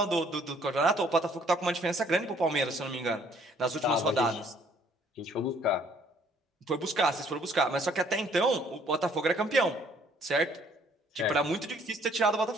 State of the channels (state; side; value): normal; both; correlation 0.61